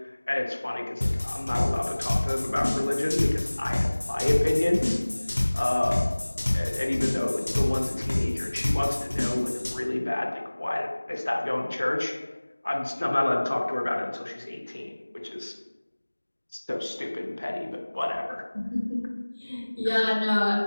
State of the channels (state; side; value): inverted; both; correlation -1.00